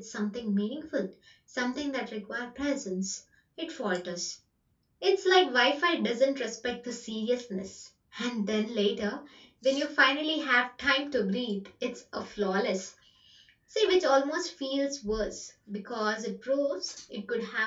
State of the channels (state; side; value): identical; both; correlation 1.00